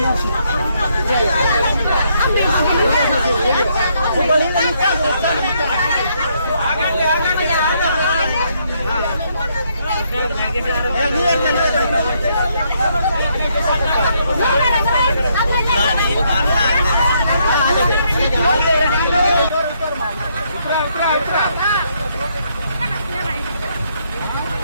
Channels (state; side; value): inverted; both; correlation -0.73